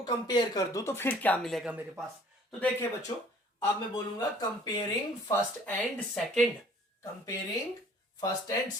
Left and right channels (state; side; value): normal; both; correlation 0.54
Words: कंपेयर कर दूं तो फिर क्या मिलेगा मेरे पास। तो देखिए बच्चों, अब मैं बोलूंगा comparing first and second, comparing first and